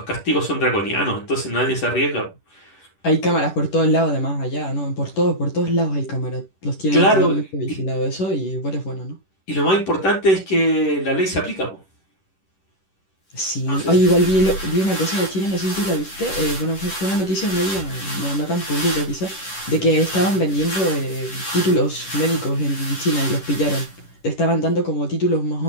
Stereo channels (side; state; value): right; late; 10 ms